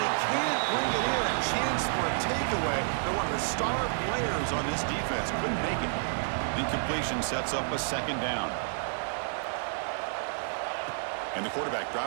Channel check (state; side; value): silent; left; digital silence